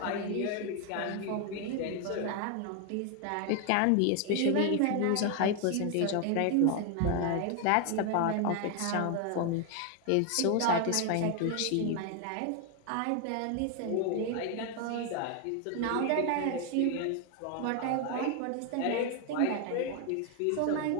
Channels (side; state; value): both; different; correlation 0.01